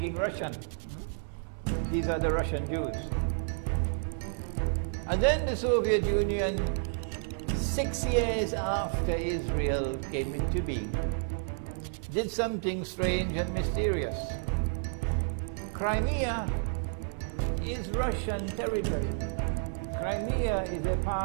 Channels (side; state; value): left; silent; digital silence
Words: Russian. These are the Russian Jews. And then the Soviet Union, 6 years after Israel came into being, did something strange and mysterious. Crimea is Russian territory. Crimea is a